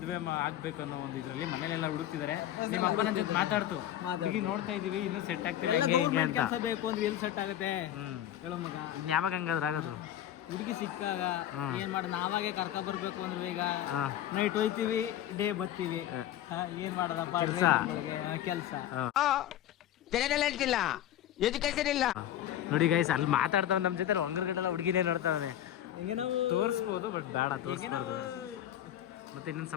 ಆಗ್ಬೇಕು ಅನ್ನೋ ಒಂದು ಇದರಲ್ಲಿ ಮನೇಲೆಲ್ಲ ಹುಡುಕ್ತಿದ್ದಾರೆ. ನಿಮ್ಮ ಅಪ್ಪನ ಜೊತೆ ಮಾತಾಡ್ತು, ಹುಡುಗಿ ನೋಡ್ತಾ ಇದೀವಿ, ಇನ್ನೂ ಸೆಟ್ ಆಗ್ತಿಲ್ಲ ಹಿಂಗೆ ಅಂತ. ಕೆಲಸ ಬೇಕು ಅಂದ್ರೆ ಎಲ್ಲಿ ಸೆಟ್ ಆಗುತ್ತೆ ಹೇಳೋ ಮಗ. ಇನ್ ಯಾವಾಗ ಹಂಗಾದ್ರೆ ಆಗೋದು? ಹುಡುಗಿ ಸಿಕ್ಕಾಗ ಏನ್ ಮಾಡ, ನಾವಾಗೆ ಕರ್ಕ ಬರ್ಬೇಕು ಅಂದ್ರೆ ಈಗ ನೈಟ್ ಹೋಯ್ತಿವಿ, ಡೇ ಬರ್ತೀವಿ. ಏನ್ ಮಾಡೋದಪ್ಪ ಕೆಲಸ. ನೋಡಿ ಗೈಸ್, ಅಲ್ಲಿ ಮಾತಾಡ್ತಾವ ನಮ್ ಜೊತೆ, ಹೊಂಗರ್ಗಡೆಲ್ಲ ಹುಡುಗಿನೇ ನೋಡ್ತಾವೆ. ಹಿಂಗೆ ನಾವು ತೋರಿಸ್ಬೋದು, ಬಟ್ ಬೇಡ ತೋರಿಸ್ಬಾರ್ದು. ಮತ್ತೆ ಇನ್ನೊಂದು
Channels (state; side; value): quieter; right; 11.9 dB